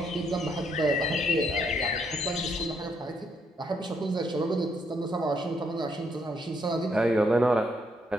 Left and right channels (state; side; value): normal; both; correlation 0.73